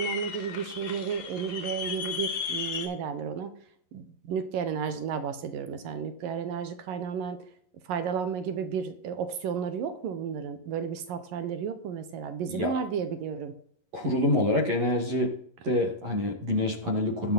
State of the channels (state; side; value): late; left; 11 ms